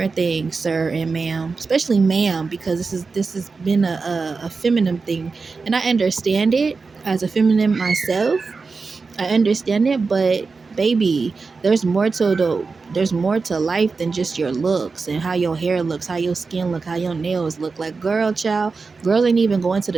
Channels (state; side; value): quieter; left; 4.4 dB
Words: things, sir and ma'am. Especially ma'am, because this has been a feminine thing. And I understand it as a feminine myself. I understand it, but baby, there's more to life than just your looks and how your hair looks, how your skin look, how your nails look. Like girl, child, girls ain't even going to